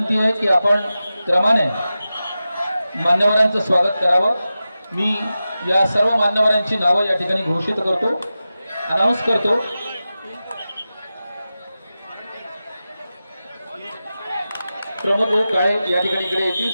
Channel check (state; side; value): inverted; both; correlation -0.93